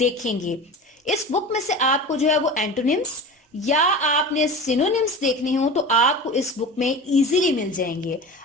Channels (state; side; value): normal; both; correlation 0.33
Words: इस बुक में से आपको जो है वो एंटोनिम्स या आपने सिनोनिम्स देखने हो तो आपको इस बुक में इजीली मिल जाएंगे।